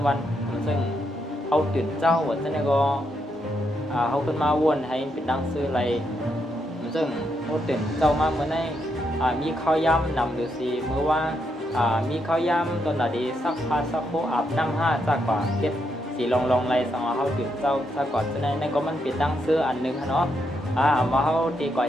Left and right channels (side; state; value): both; normal; correlation 0.80